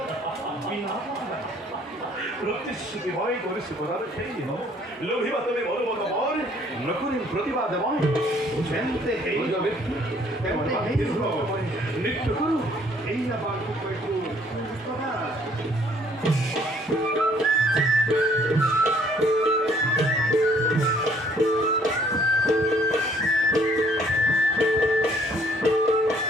প্রতিশ্রুতি হয় করেছি প্রদান সেই দিন লোভিবা তুমি বলবত মন নকুরি প্রতিবাদ মন বুঝেনতে এই নৃত্য করু এই না বাক্য কইতু প্রদান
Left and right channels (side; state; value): both; normal; correlation 0.61